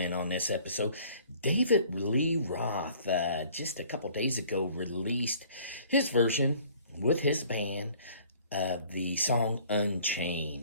on this episode. David Lee Roth, just a couple days ago, released his version with his band of the song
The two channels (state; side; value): inverted; both; correlation -0.54